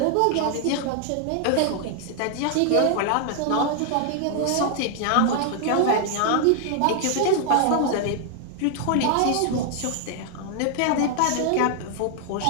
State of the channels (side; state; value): both; different; correlation 0.00